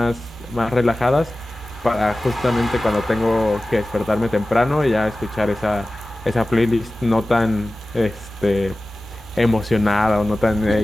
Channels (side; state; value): both; normal; correlation 0.96